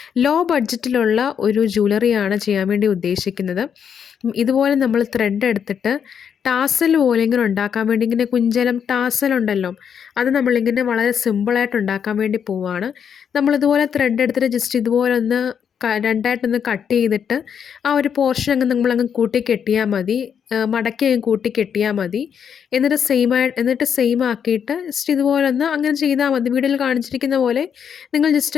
ലോ ബഡ്ജറ്റിലുള്ള ഒരു ജ്വല്ലറിയാണ് ചെയ്യാൻ വേണ്ടി ഉദ്ദേശിക്കുന്നത്. ഇതുപോലെ നമ്മൾ ത്രെഡ് എടുത്തിട്ട് ടാസൽ പോലെ ഇങ്ങനെ ഉണ്ടാക്കാൻ വേണ്ടി, ഇങ്ങനെ കുഞ്ചലം ടാസൽ ഉണ്ടല്ലോ, അത് നമ്മളിങ്ങനെ വളരെ സിമ്പിളായിട്ട് ഉണ്ടാക്കാൻ വേണ്ടി പോവുകയാണ്. നമ്മളിതുപോലെ ത്രെഡ് എടുത്തിട്ട് ജസ്റ്റ് ഇതുപോലെ ഒന്ന് രണ്ടായിട്ടൊന്ന് കട്ട് ചെയ്തിട്ട് ആ ഒരു പോർഷൻ അങ്ങ് നമ്മളങ്ങ് കൂട്ടി കെട്ടിയാൽ മതി. മടക്കി അങ്ങ് കൂട്ടി കെട്ടിയാൽ മതി. എന്നിട്ട് സെയിം ആക്കിയിട്ട് ജസ്റ്റ് ഇതുപോലെ ഒന്ന് അങ്ങനെ ചെയ്താൽ മതി. വീഡിയോയിൽ കാണിച്ചിരിക്കുന്ന പോലെ നിങ്ങൾ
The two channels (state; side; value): quieter; right; 7.7 dB